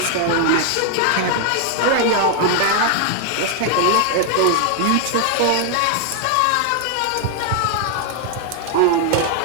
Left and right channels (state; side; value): different; both; correlation 0.00